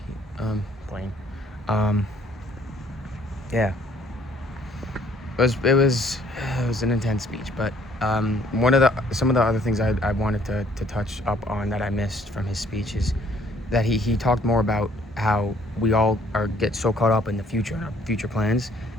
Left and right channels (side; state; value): both; normal; correlation 0.61